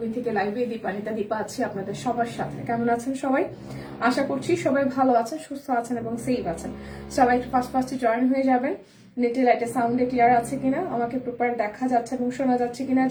থেকে লাইভে দীপানিতা দীপা আছি আপনাদের সবার সাথে। কেমন আছেন সবাই? আশা করছি সবাই ভালো আছেন, সুস্থ আছেন এবং সেফ আছেন। সবাই একটু ফার্স্টে জয়েন হয়ে যাবেন। নেটে লাইটে সাউন্ডে ক্লিয়ার আছে কিনা, আমাকে প্রপার দেখা যাচ্ছে এবং শোনা যাচ্ছে কিনা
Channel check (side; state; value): both; identical; correlation 1.00